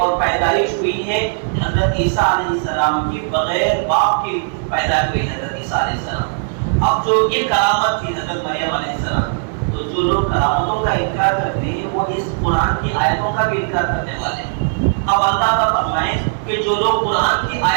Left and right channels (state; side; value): silent; left; digital silence